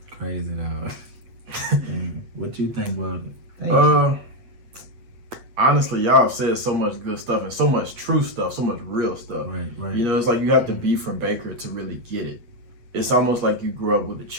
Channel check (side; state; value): left; late; 8.5 ms